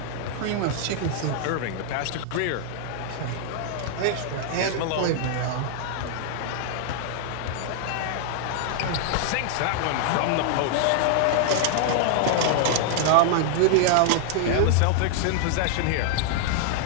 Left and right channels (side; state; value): both; different; correlation 0.00